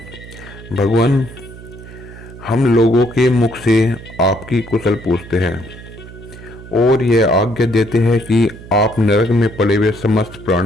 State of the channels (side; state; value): right; noise; hum, 16 dB below the sound